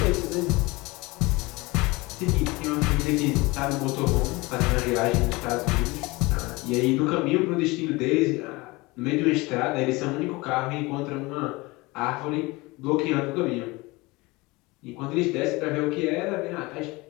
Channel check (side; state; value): right; quieter; 23.2 dB